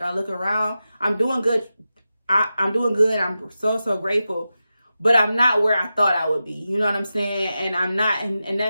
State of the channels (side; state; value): both; inverted; correlation -0.92